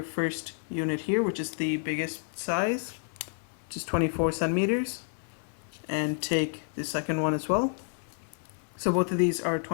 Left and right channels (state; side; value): silent; right; 58 dB below the other